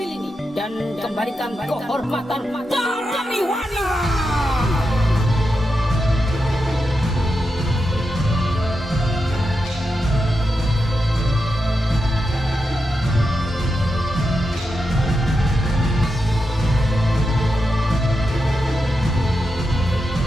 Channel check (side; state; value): both; normal; correlation 0.87